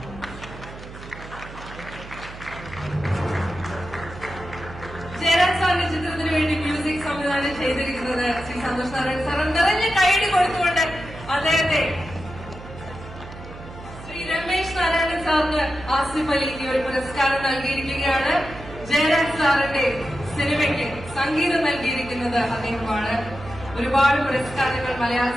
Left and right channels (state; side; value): noise; right; hum, 15 dB below the sound